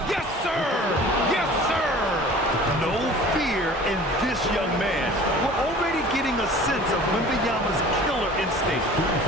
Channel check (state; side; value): normal; both; correlation 0.44